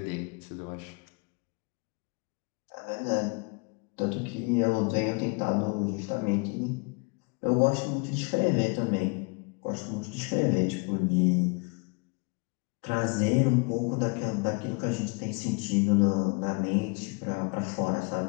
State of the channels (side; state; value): right; quieter; 32.0 dB